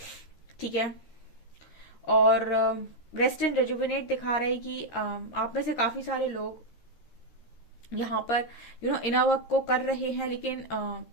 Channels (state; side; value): late; right; 13 ms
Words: ठीक है, और रेस्ट एंड रेजुविनेट दिखा रहा है कि आप में से काफी सारे लोग यहाँ पर इनर वर्क को कर रहे हैं। लेकिन